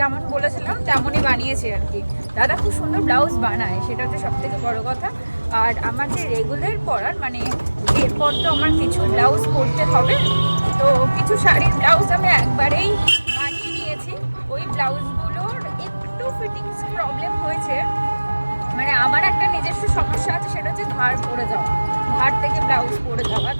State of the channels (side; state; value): both; inverted; correlation -1.00